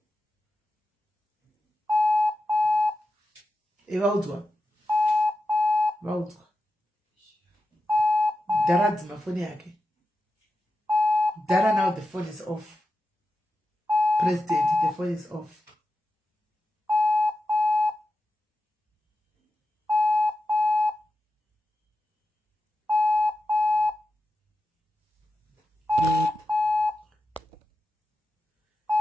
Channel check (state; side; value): normal; both; correlation 0.91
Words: Evaudzwa. Vaudzwa. Dara dzima phone yake. Dara now the phone is off. President, the phone is off.